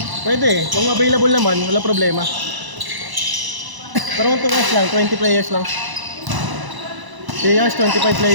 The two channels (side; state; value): left; late; 1.0 ms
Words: Pwede. Kung available naman, wala problema. Pero kung 2 hours lang, 20 players lang. 3 hours, 25